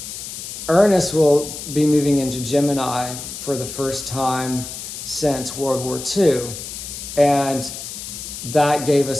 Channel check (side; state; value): left; noise; hiss, 9 dB below the sound